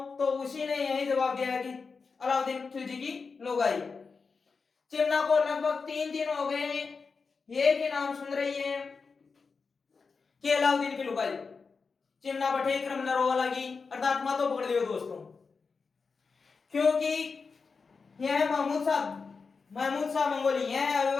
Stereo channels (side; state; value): right; quieter; 4.9 dB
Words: तो उसी ने यही जवाब दिया कि अलाउद्दीन खिलजी की लुगाई। चिमना को लगभग 3 दिन हो गए एक ही नाम सुन रही है कि अलाउद्दीन की लुगाई। चिमना बठे क्रम न रोवा लगी, अर्थात मातो पकड़ लियो दोस्तों, क्योंकि यह महमूद शाह मंगोली यह